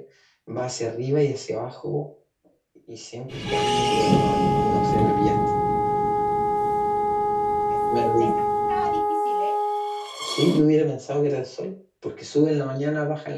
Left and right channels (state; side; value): identical; both; correlation 1.00